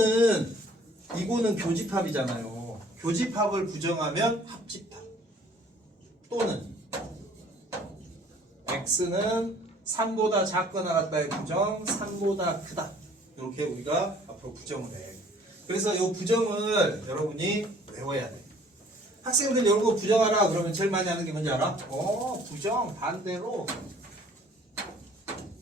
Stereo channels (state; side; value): normal; both; correlation 0.55